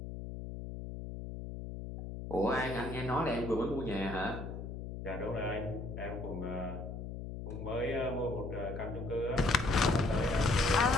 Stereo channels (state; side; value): noise; left; hum, 8 dB below the sound